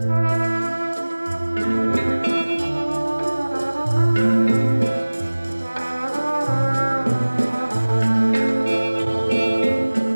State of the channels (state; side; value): inverted; both; correlation -1.00